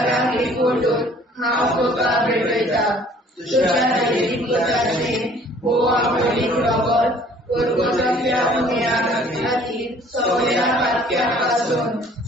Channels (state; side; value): normal; both; correlation 0.55